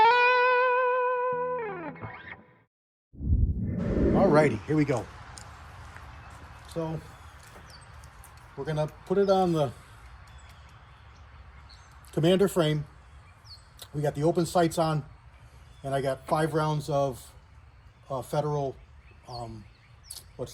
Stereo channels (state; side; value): identical; both; correlation 1.00